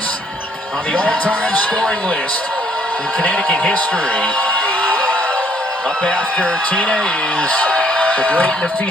on the all-time scoring list in Connecticut history. Up after Tina is the great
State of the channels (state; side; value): normal; both; correlation 0.64